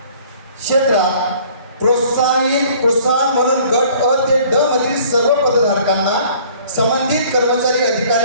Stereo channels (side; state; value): both; inverted; correlation -0.54